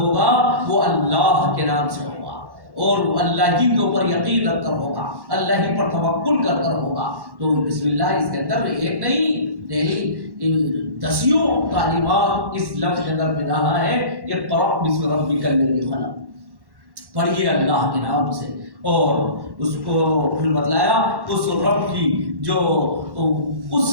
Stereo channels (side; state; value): left; late; 1.1 ms